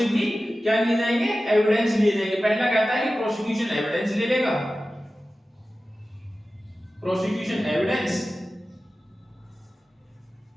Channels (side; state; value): both; normal; correlation 0.95